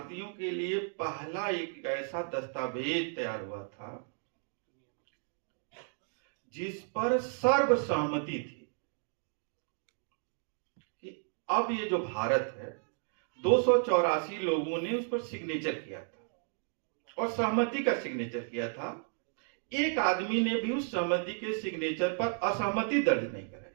के लिए पहला एक ऐसा दस्तावेज तैयार हुआ था जिस पर सर्वसहमति थी कि अब ये जो भारत है, 284 लोगों ने उस पर सिग्नेचर किया था और सहमति का सिग्नेचर किया था। एक आदमी ने भी उस सहमति के सिग्नेचर पर असहमति दर्ज नहीं कराई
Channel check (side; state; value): left; silent; 56 dB below the other